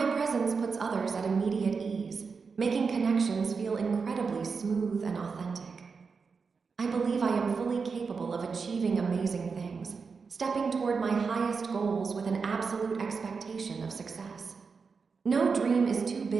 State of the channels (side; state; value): left; quieter; 5.1 dB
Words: presence puts others at immediate ease, making connections feel incredibly smooth and authentic. I believe I am fully capable of achieving amazing things, stepping toward my highest goals with an absolute expectation of success. No dream is too